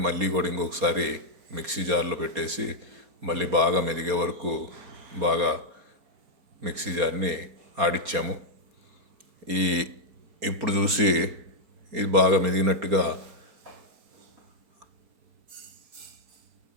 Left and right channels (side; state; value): left; late; 4.3 ms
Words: మళ్ళీ కూడా ఇంకొకసారి మిక్సీ జార్లో పెట్టేసి మళ్ళీ బాగా మెదిగే వరకు బాగా మిక్సీ జార్ని ఆడిచ్చాము. ఇప్పుడు చూసి ఇది బాగా మెదిగినట్టుగా